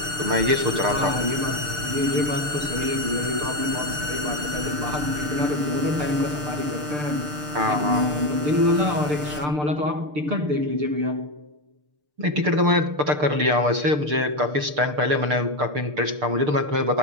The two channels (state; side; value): late; left; 6.7 ms